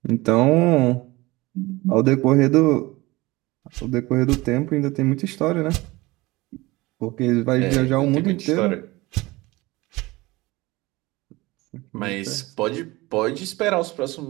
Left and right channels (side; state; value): left; quieter; 21.1 dB